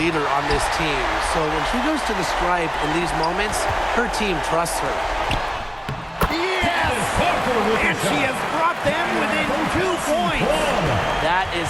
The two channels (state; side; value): identical; both; correlation 1.00